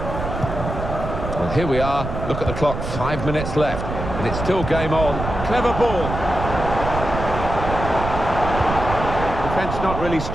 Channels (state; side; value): noise; right; rumble, 6 dB below the sound